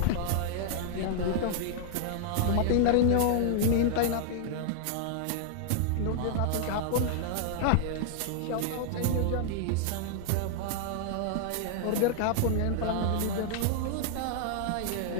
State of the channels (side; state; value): both; different; correlation 0.00